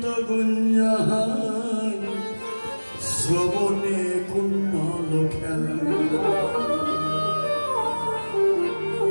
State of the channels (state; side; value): inverted; both; correlation -1.00